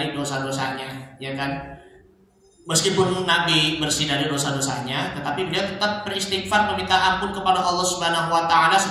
dosa-dosanya, ya kan? Meskipun Nabi bersih dari dosa-dosanya, tetapi beliau tetap beristighfar meminta ampun kepada Allah Subhanahu wa taala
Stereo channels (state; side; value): identical; both; correlation 1.00